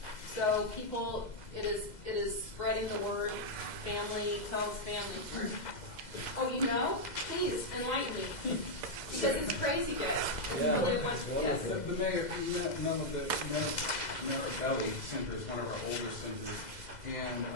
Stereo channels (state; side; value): late; right; 2.0 ms